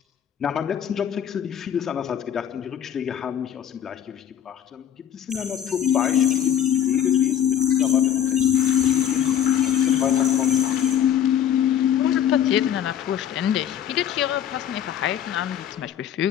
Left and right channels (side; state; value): right; quieter; 9.8 dB